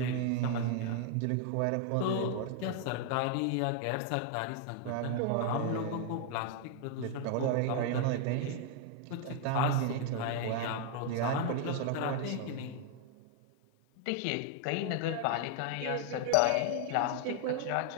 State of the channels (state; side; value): different; both; correlation 0.00